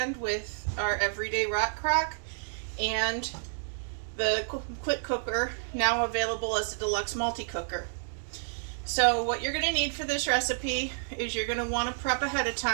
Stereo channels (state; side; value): silent; left; digital silence